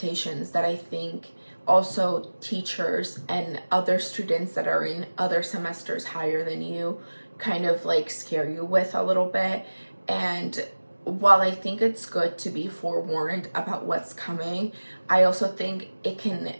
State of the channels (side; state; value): both; inverted; correlation -1.00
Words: that I think also teachers and other students that are in other semesters higher than you kind of like scare you with a little bit. And while I think it's good to be forewarned about what's coming, I also think it can